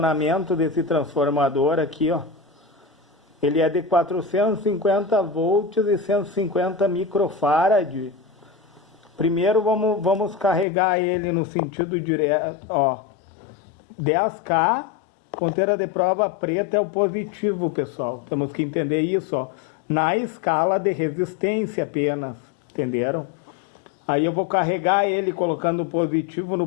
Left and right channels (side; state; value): right; drops out; at 10.7 s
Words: desse transformador aqui, ó. Ele é de 450 volts e 150 microfarad. Primeiro vamos carregar ele no sentido direto, ó. 10K, ponteira de prova preta é o positivo, pessoal. Temos que entender isso, ó. Na escala de resistência apenas, entenderam? Aí eu vou carregar ele colocando o positivo